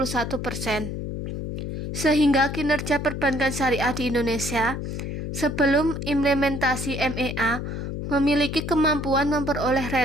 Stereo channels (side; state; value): left; noise; hum, 5 dB below the sound